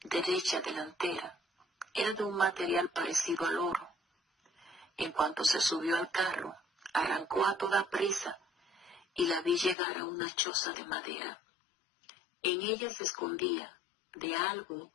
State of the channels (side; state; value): right; drops out; at 9.8 s